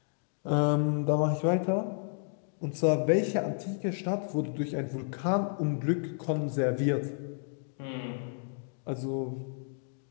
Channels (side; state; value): right; silent; digital silence